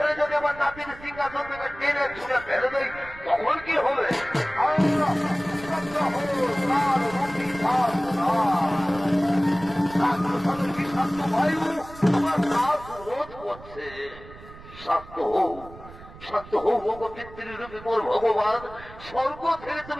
যদি আমার নাতির সিংহাসন থেকে টেনে ছুঁড়ে ফেলে দেয় তখন কি হবে? বায়ু আমার শ্বাস রোধ করছে। শান্ত হোক, শান্ত হোক পিতৃরূপী মোর ভগবান, স্বর্গ থেকে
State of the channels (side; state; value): right; noise; rumble, 18 dB below the sound